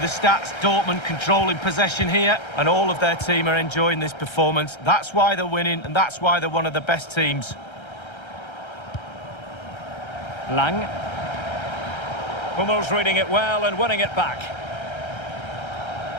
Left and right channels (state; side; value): late; right; 1.3 ms